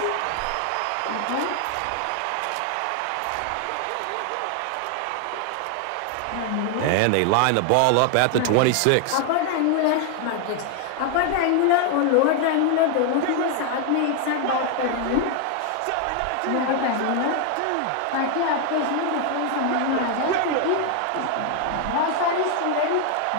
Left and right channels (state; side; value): different; both; correlation 0.00